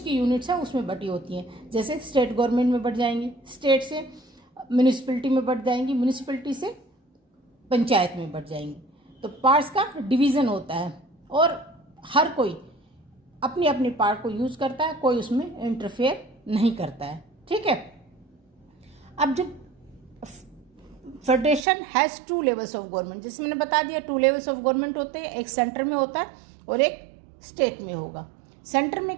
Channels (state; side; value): drops out; left; at 21.7 s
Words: यूनिट्स हैं उसमें बटी होती हैं। जैसे स्टेट गवर्नमेंट में बट जाएंगी, स्टेट से म्यूनिसिपैलिटी में बट जाएंगी, म्यूनिसिपैलिटी से पंचायत में बट जाएंगी। तो पावर्स का डिवीज़न होता है और हर कोई अपनी अपनी पावर को यूज़ करता है, कोई उसमें इंटरफेयर नहीं करता है। ठीक है, अब जब federation has 2 levels of government, जैसे मैंने बता दिया 2 लेवल्स ऑफ गवर्नमेंट होते हैं, एक सेंटर में होता है और एक स्टेट में होगा। सेंटर